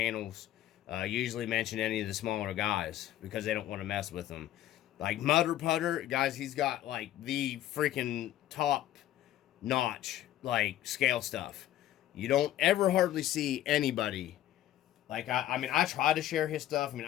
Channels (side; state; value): right; quieter; 13.0 dB